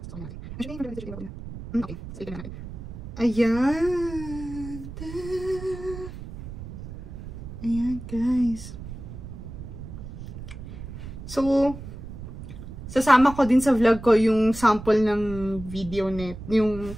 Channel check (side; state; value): right; noise; rumble, 11 dB below the sound